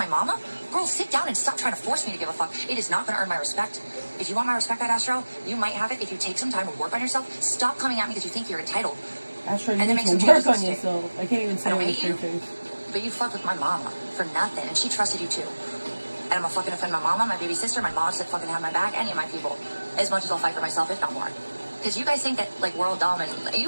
mama, girl, sit down and stop trying to force me to give a fuck. It is not going to earn my respect. If you want my respect, Astro, you might have it if you take some time and work on yourself. Stop coming at me because you think you're entitled. Astro, you need to work on yourself. I can't even say it with your face. But you fucked with my mama for nothing, and she trusted you too. And I'm gonna fucking offend my mama, my baby sister, my mom said fucking have my back, any of my people, as much as I'll fight for myself, if not more. Because you guys think that, like, we're all dumb, and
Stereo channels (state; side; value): inverted; both; correlation -1.00